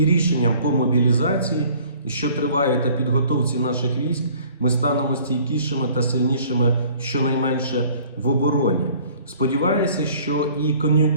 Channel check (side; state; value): both; inverted; correlation -0.53